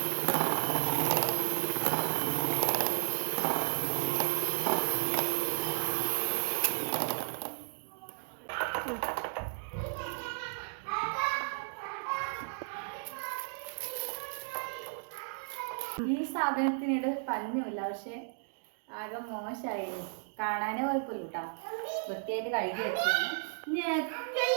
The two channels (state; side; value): silent; left; digital silence